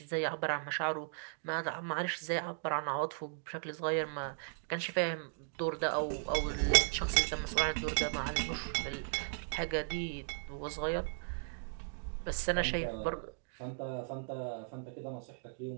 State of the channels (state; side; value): silent; left; digital silence